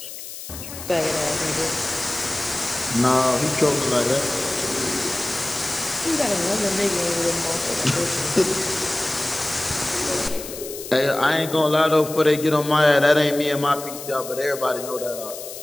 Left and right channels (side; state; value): left; noise; hiss, 11 dB below the sound